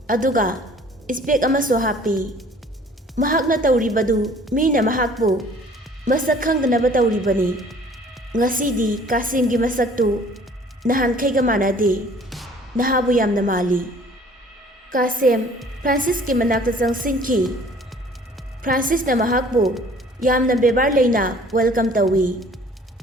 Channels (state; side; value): normal; both; correlation 0.53